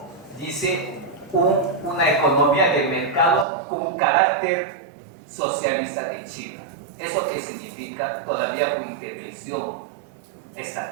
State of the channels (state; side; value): drops out; left; at 3.5 s